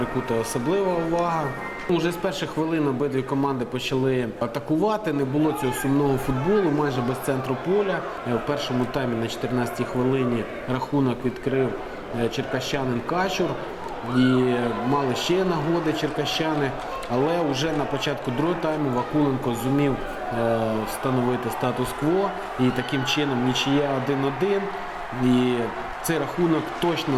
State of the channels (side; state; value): both; identical; correlation 1.00